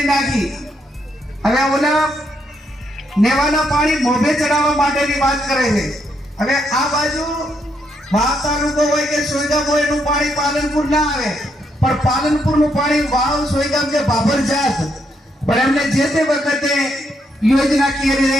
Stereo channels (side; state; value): both; normal; correlation 0.77